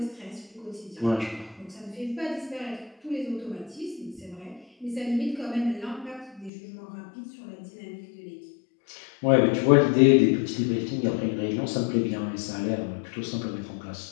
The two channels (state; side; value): drops out; right; at 6.5 s